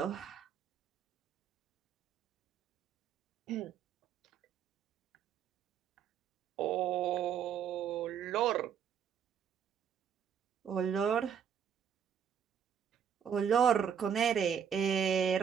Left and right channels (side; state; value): left; quieter; 8.0 dB